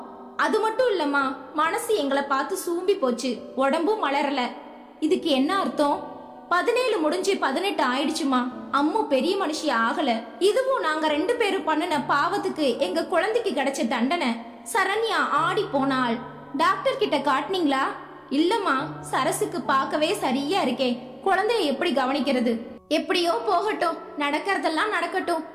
அது மட்டும் இல்லம்மா, மனசு எங்களை பார்த்து சூம்பி போச்சு. உடம்பும் மலரல. இதுக்கு என்ன அர்த்தம்? 17 முடிஞ்சு 18 ஆயிடுச்சுமா. அம்மு பெரிய மனுஷி ஆகல. இதுவும் நாங்க 2 பேரும் பண்ணுன பாவத்துக்கு எங்க குழந்தைக்கு கிடைச்ச தண்டனை. சரண்யா ஆடி போனாள். டாக்டர் கிட்ட காட்டினீங்களா? இல்லம்மா, சரசுக்கு பார்க்கவே சரியா இருக்கே. குழந்தைய எப்படி கவனிக்கிறது? எப்படியோ போகட்டும். நடக்கிறதெல்லாம் நடக்கட்டும்.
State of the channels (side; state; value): both; identical; correlation 1.00